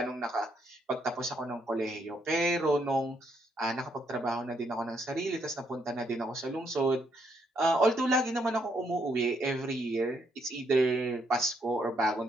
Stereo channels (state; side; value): normal; both; correlation 0.74